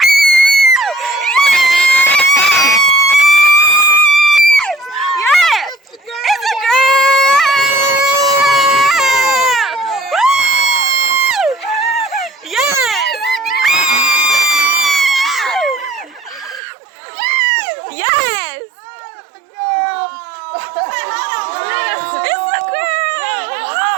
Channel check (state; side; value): drops out; left; at 16.6 s